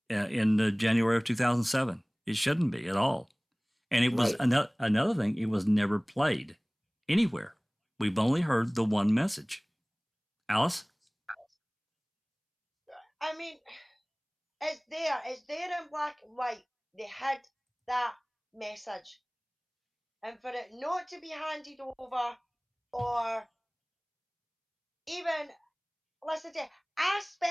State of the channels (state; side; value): identical; both; correlation 1.00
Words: in January of 2007? It shouldn't be at all. And it was another thing, it was never played anywhere. We've only heard the one message. Alice? I mean, it's there in black and white. They had that message. And for it not to be handed over, or even, listen to, I